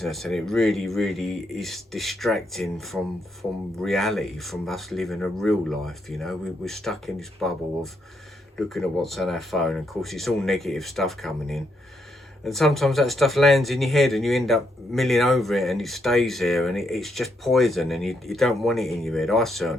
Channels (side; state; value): both; normal; correlation 0.77